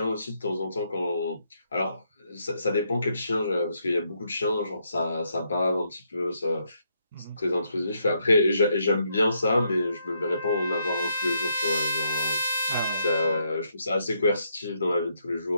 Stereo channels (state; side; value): inverted; both; correlation -0.76